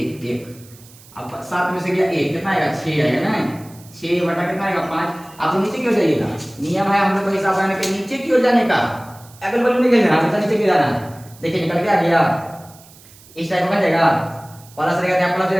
1, अब 7 में से गया 1 कितना आएगा 6 आएगा ना, 6 बटा कितना आएगा 5। आपको नीचे क्यों जाइएगा, नियम है हम लोग का हिसाब लगाने के नीचे क्यों जाने का, अगल बगल नहीं खेलना, हमेशा नीचे क्यों जाना है। देखिए निकल के आ गया, इस टाइप का बन जाएगा, प्लस रहेगा क्या प्लस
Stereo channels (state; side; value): noise; right; hiss, 24 dB below the sound